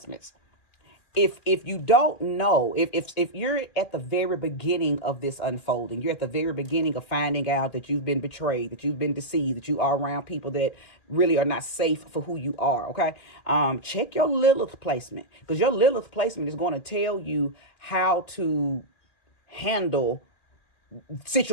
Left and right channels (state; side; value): late; right; 2.4 ms